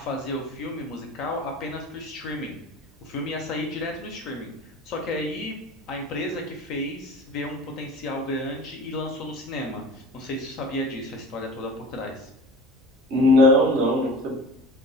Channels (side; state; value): both; normal; correlation 0.39